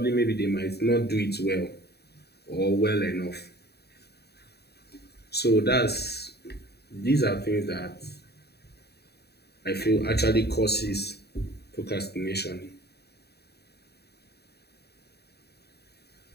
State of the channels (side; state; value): right; late; 0.47 ms